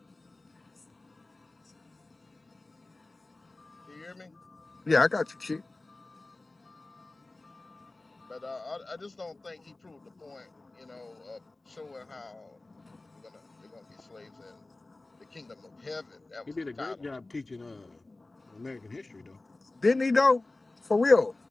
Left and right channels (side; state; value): right; quieter; 3.0 dB